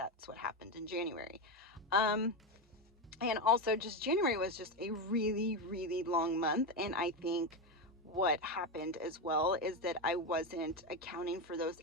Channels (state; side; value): normal; both; correlation 0.13